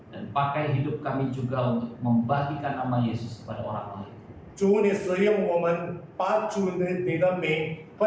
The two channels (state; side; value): identical; both; correlation 1.00